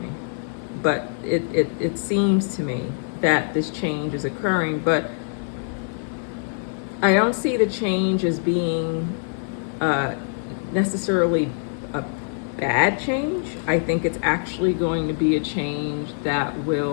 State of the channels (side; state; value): right; silent; 63 dB below the other